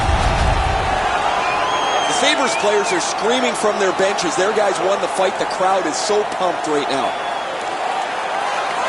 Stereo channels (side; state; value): both; identical; correlation 1.00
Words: The Sabres players are screaming from their benches. Their guys won the fight. The crowd is so pumped right now.